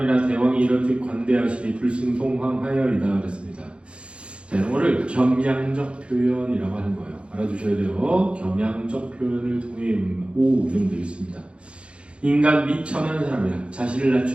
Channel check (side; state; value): left; late; 0.059 ms